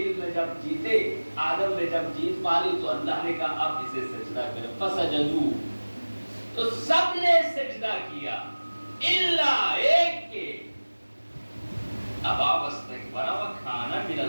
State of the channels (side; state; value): both; inverted; correlation -1.00